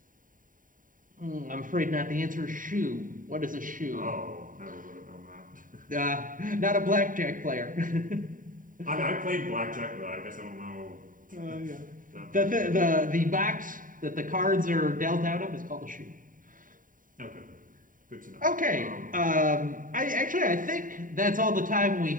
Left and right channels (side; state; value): left; late; 0.39 ms